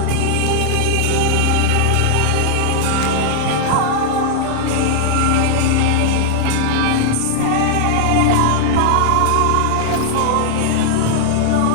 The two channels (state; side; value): different; both; correlation -0.01